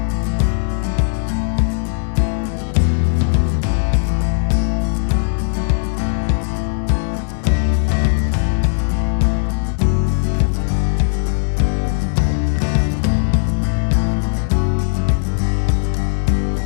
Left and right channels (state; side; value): silent; right; digital silence